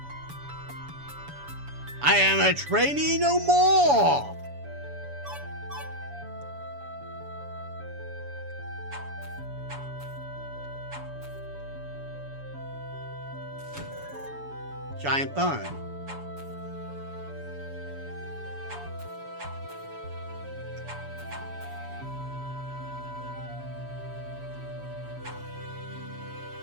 I am a trainee no more! Giant Bone.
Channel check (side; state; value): left; late; 7.0 ms